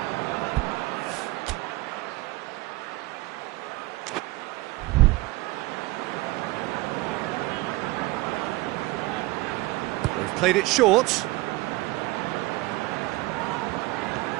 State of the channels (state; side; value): quieter; left; 20.7 dB